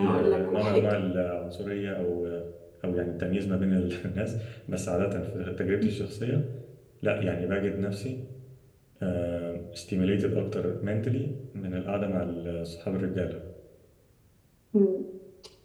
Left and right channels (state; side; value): identical; both; correlation 1.00